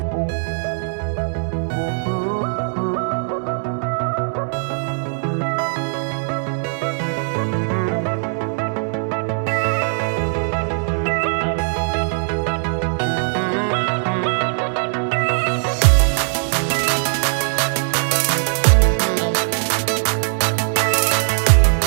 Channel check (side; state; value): left; silent; digital silence